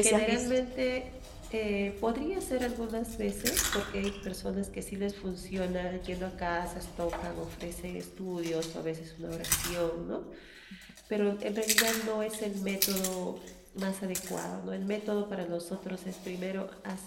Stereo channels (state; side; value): identical; both; correlation 1.00